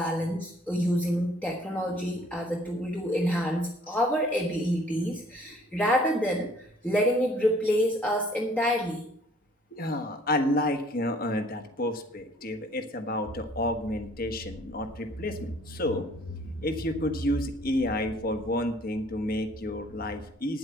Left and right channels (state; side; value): normal; both; correlation 0.57